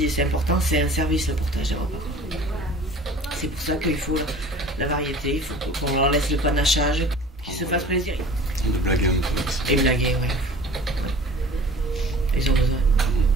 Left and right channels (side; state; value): both; normal; correlation 0.44